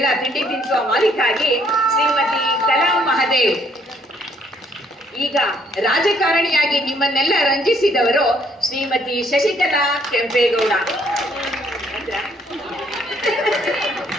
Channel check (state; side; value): normal; both; correlation 0.66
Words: ತಿಂಡಿ ತಿನ್ಸುವ ಮಾಲೀಕ ಆಗಿ ಶ್ರೀಮತಿ ಕಲಾ ಮಹದೇವ್. ಈಗ ರಾಜಕಾರಣಿಯಾಗಿ ನಿಮ್ಮನ್ನೆಲ್ಲ ರಂಜಿಸಿದವರು ಶ್ರೀಮತಿ ಶಶಿಕಲಾ ಕೆಂಪೇಗೌಡ.